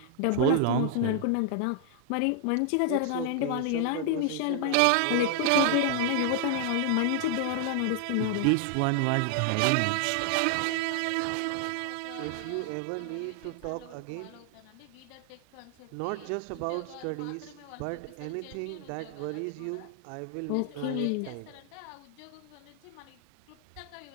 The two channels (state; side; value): different; both; correlation 0.00